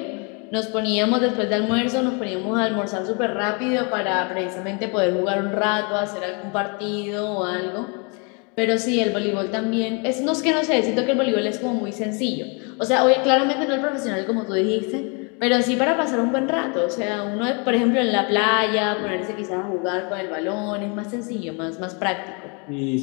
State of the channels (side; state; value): right; quieter; 34.2 dB